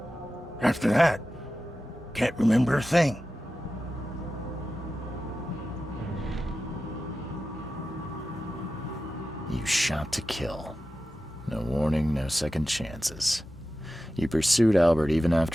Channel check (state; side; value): normal; both; correlation 0.93